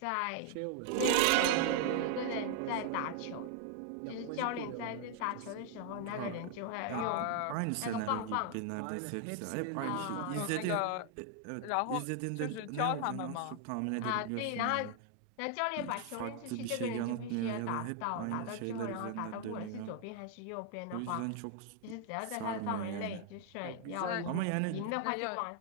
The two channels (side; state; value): both; different; correlation 0.00